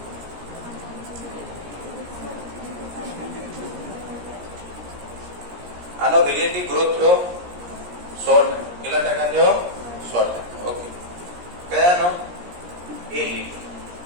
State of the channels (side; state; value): left; late; 17 ms